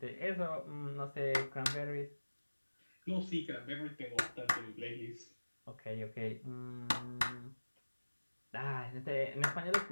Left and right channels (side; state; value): both; inverted; correlation -1.00